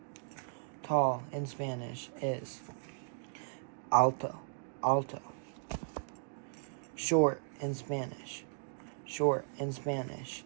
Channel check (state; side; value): silent; left; digital silence